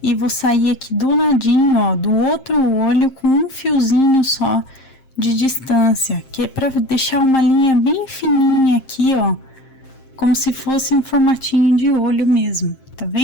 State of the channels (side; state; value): right; late; 7.6 ms